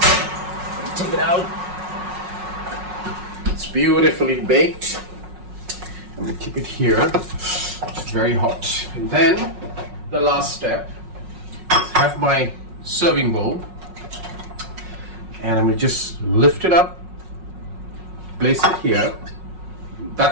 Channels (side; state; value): left; late; 5.5 ms